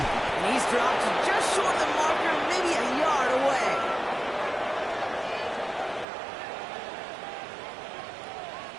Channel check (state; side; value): drops out; left; at 6.1 s